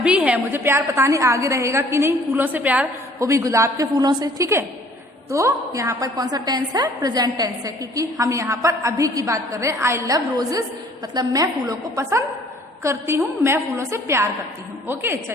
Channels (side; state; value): both; normal; correlation 0.56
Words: है, मुझे प्यार पता नहीं आगे रहेगा कि नहीं, फूलों से प्यार, वो भी गुलाब के फूलों से। ठीक है, तो यहाँ पर कौन सा टेंस है? प्रेजेंट टेंस है, क्योंकि हम यहाँ पर अभी की बात कर रहे हैं। आई लव रोजेस मतलब मैं फूलों को पसंद करती हूँ, मैं फूलों से प्यार करती हूँ। ओके,